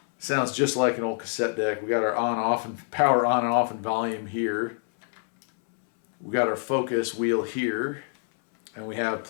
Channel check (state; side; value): silent; right; 61 dB below the other